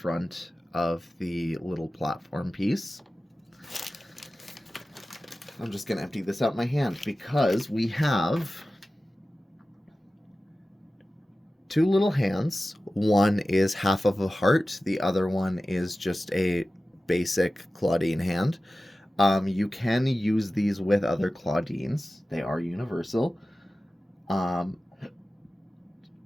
of the little platform piece. I'm just going to empty this out my hand because we have 2 little hands. One is half of a heart, the other one is just a basic Clawdeen hand. You can use these with other Clawdeens. They are universal.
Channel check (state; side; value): normal; both; correlation 0.95